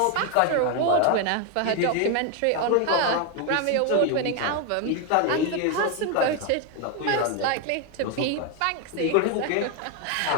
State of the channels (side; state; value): both; different; correlation 0.01